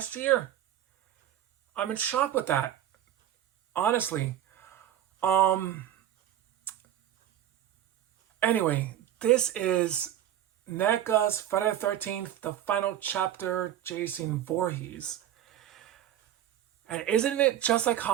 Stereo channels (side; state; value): left; quieter; 11.3 dB